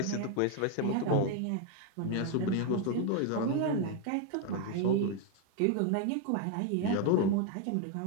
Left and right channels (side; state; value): both; different; correlation 0.01